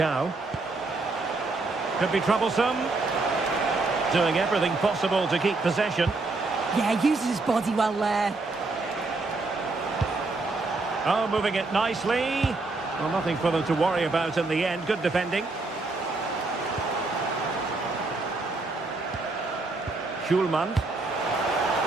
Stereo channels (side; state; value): left; quieter; 3.4 dB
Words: Could be troublesome. Doing everything possible to keep possession. Yeah, uses his body well there. Oh, moving it nicely. Well, nothing for them to worry about in the end. Good defending. Hjulman.